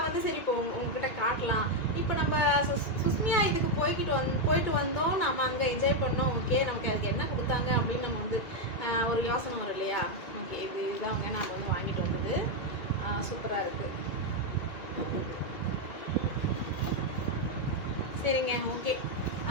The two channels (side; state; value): right; late; 2.4 ms